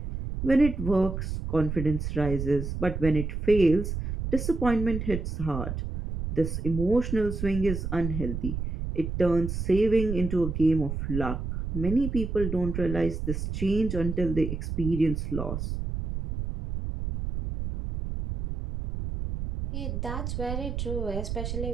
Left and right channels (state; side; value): noise; right; rumble, 4 dB below the sound